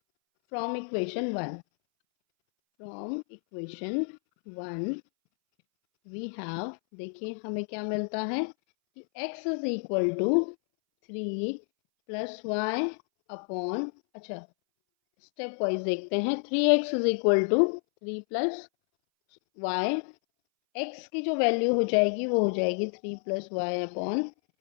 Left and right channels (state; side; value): silent; right; 58 dB below the other